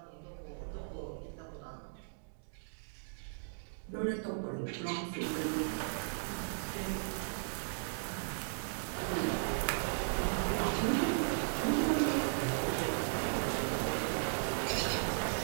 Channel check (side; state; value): left; silent; digital silence